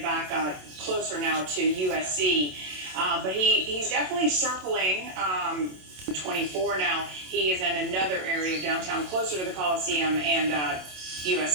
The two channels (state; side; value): late; left; 27 ms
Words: back closer now to USC. But he's definitely circling 24 now. He is in another area of downtown, closer to the Coliseum and